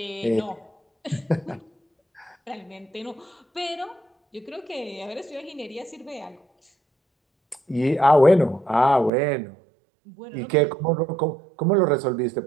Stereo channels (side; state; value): left; drops out; at 9.1 s